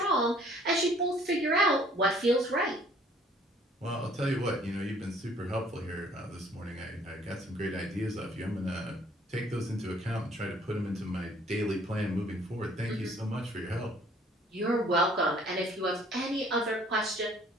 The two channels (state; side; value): normal; both; correlation 0.58